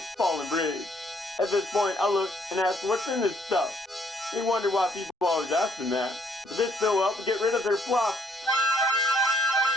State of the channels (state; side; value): normal; both; correlation 0.67